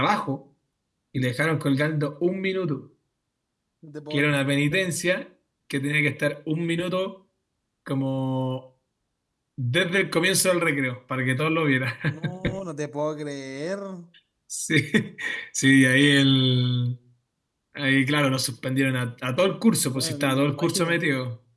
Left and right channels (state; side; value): identical; both; correlation 1.00